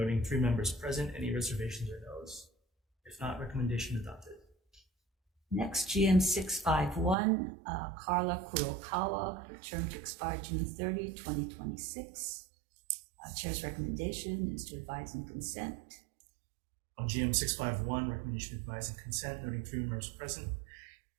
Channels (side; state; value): left; drops out; at 7.2 s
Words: 3 members present. Any reservations or no's? If not, recommendation adopted. Next, GM 651, Carla Kurokawa, term to expire June 30, 2026. Chair's recommendation is to advise and consent. On GM 651, recommendation to advise and consent, noting 3 members present.